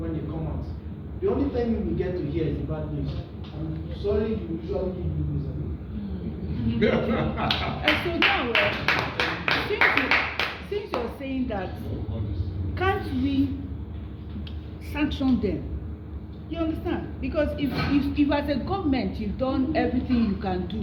they come out. The only thing we get to hear is the bad news. I'm sorry, you usually give me news. And so now, since you're saying that, can't we sanction them? You understand? Because if as a government you've done everything you can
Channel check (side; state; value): both; identical; correlation 1.00